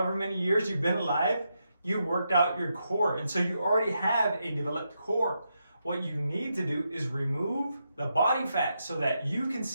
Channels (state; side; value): inverted; both; correlation -0.84